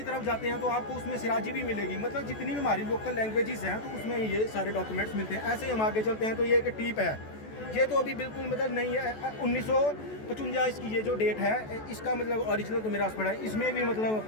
तरफ जाते हैं तो आपको उसमें सिराजी भी मिलेगी। मतलब जितनी भी हमारी लोकल लैंग्वेजेस हैं तो उसमें ये सारे डॉक्यूमेंट्स मिलते हैं। ऐसे ही हम आगे चलते हैं। तो ये एक टीप है। ये तो अभी बिल्कुल मतलब नहीं है। 1955 इसकी ये जो डेट है, इसका मतलब ओरिजिनल तो मेरे पास पड़ा है। इसमें भी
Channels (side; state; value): right; late; 14 ms